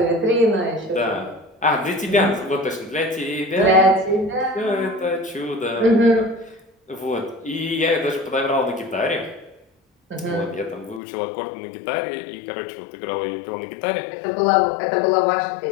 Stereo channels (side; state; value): right; drops out; at 11.0 s